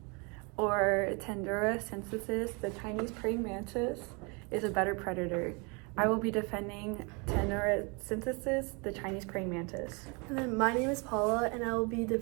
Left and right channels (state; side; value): quieter; left; 31.3 dB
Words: or Tendura synthesis, the Chinese praying mantis, is a better predator. I will be defending Tendura synthesis, the Chinese praying mantis. And then my name is Paula, and I will be